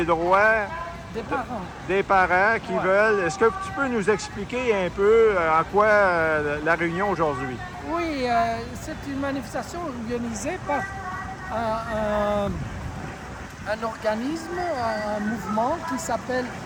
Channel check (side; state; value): both; identical; correlation 1.00